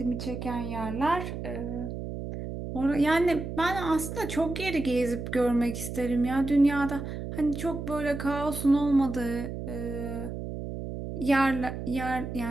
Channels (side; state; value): right; noise; hum, 7 dB below the sound